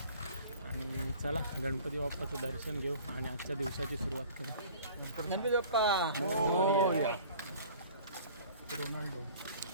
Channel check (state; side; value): inverted; both; correlation -0.47